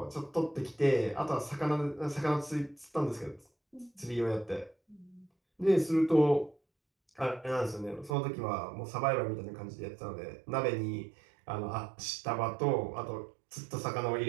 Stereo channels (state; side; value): drops out; left; at 8.1 s